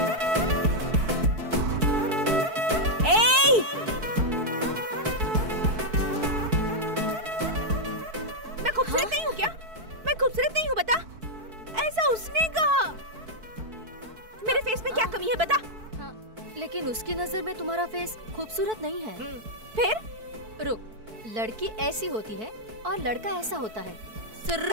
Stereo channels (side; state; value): left; late; 4.6 ms